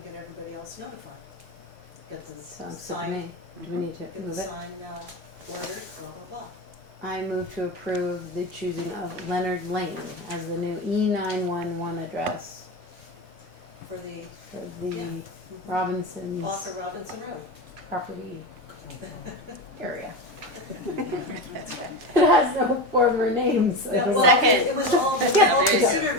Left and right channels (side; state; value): both; normal; correlation 0.21